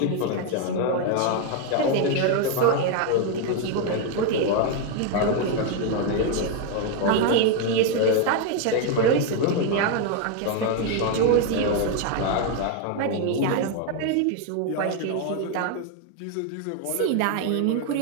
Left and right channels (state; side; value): different; both; correlation 0.01